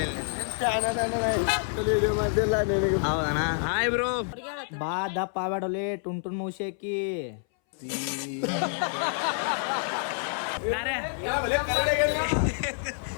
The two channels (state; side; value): silent; right; 60 dB below the other